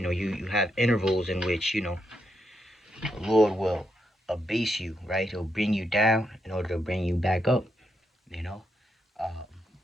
have intervals in which, the Lord will abase you, right? He'll bring you down in order to bring you back up, you know. Um,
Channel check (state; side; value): normal; both; correlation 0.81